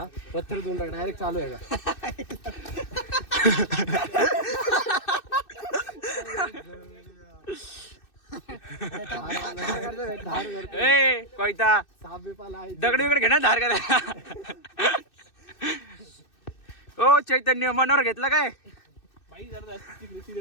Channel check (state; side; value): late; right; 2.6 ms